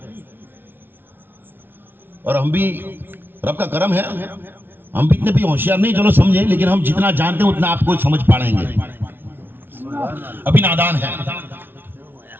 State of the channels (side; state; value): left; late; 0.10 ms